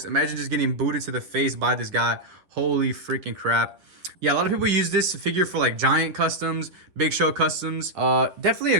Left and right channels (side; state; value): left; late; 10 ms